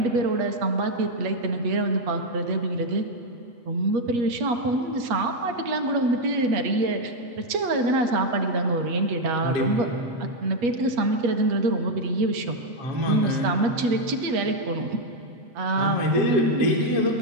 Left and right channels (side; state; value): left; late; 8.4 ms